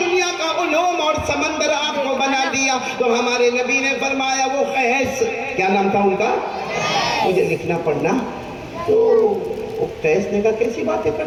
کا علوم اور سمندر آپ کو بنا دیا. تو ہمارے نبی نے فرمایا وہ قیس, کیا نام تھا ان کا, مجھے لکھنا پڑھنا. تو قیس نے کہا کیسی باتیں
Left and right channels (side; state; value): both; identical; correlation 1.00